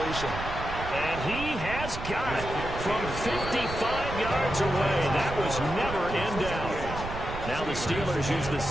And he has got it from 55 yards away. That was never in doubt. Now the Steelers use the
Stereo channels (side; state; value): right; noise; rumble, 8 dB below the sound